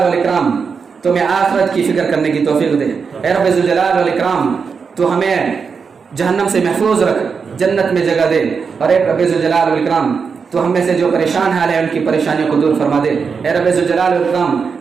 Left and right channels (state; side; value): quieter; left; 5.6 dB